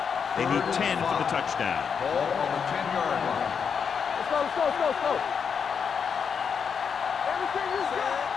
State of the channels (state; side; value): quieter; right; 6.6 dB